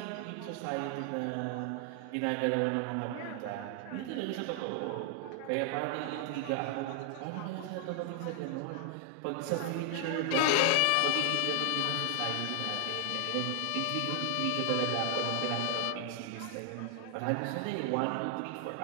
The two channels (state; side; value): different; both; correlation 0.00